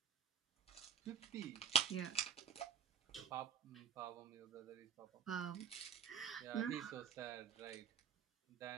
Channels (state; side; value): quieter; left; 7.8 dB